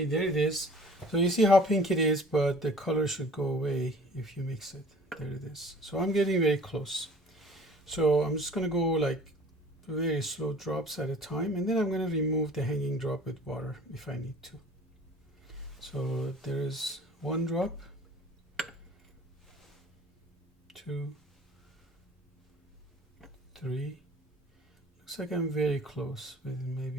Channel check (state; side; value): normal; both; correlation 0.48